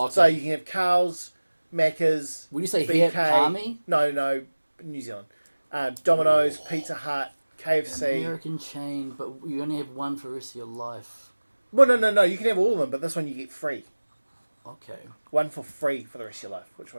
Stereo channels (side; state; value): both; inverted; correlation -1.00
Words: okay. So you can have Kels, Macca's, Would you say BK, here, Palmy? No, New Zealand. Domino's, Pizza Hut, KFC. American chain, but you only have one for the rest of your life. Well, no, you can have all of them, but this one you get free. Okay. One for free for the rest of your life. Which